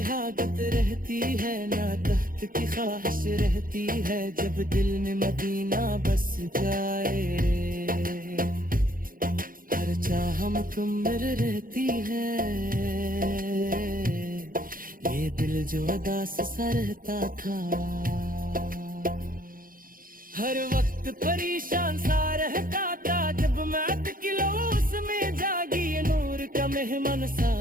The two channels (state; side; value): late; left; 0.41 ms